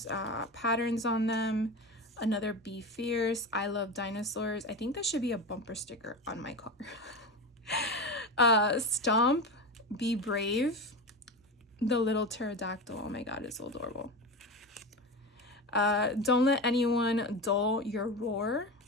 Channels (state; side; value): normal; both; correlation 0.23